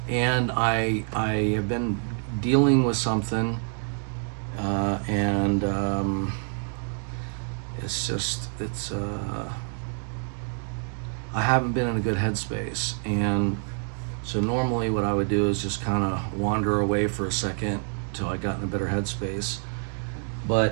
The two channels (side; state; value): left; silent; 59 dB below the other